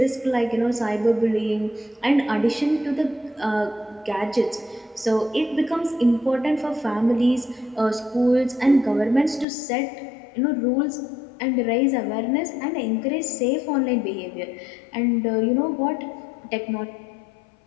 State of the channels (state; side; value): drops out; right; at 9.5 s